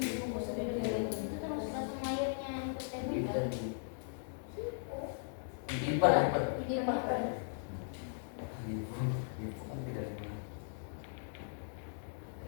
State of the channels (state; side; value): silent; right; digital silence